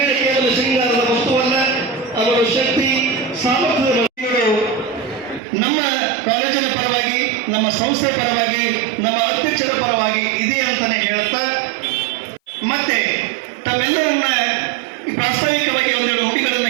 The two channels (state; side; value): drops out; left; at 5.4 s